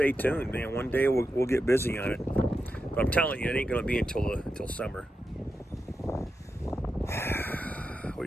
tuned, man. One day we'll get busy on it. But I'm telling you, it ain't going to be until summer. What do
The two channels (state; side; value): normal; both; correlation 0.88